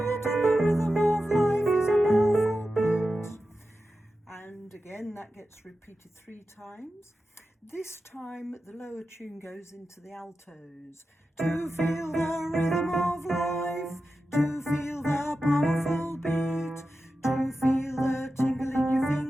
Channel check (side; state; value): both; normal; correlation 0.92